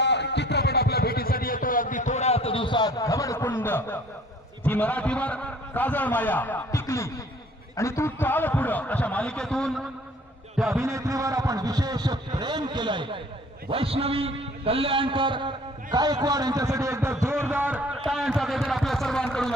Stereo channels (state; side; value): normal; both; correlation 0.54